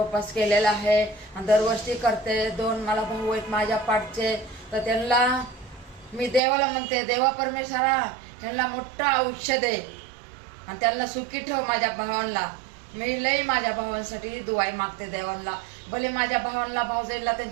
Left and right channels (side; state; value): left; drops out; at 6.4 s